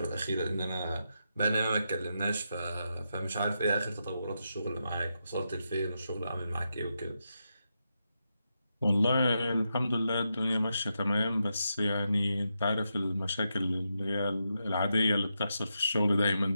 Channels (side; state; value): both; inverted; correlation -0.85